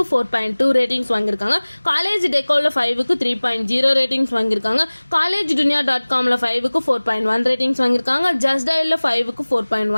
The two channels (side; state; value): both; inverted; correlation -1.00